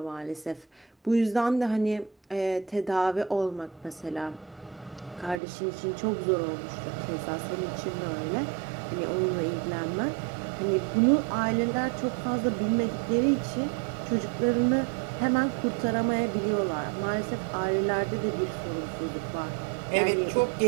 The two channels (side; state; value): left; drops out; at 5.4 s